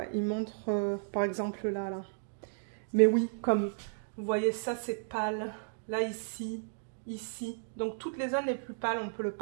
il montre, par exemple, là. Mais oui, comme vous voyez, ça, c'est pâle. Là, ici. Donc, toutes les zones les plus pâles, on peut le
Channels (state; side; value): silent; left; digital silence